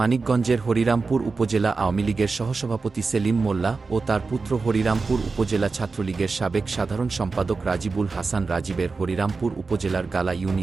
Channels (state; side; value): quieter; left; 4.3 dB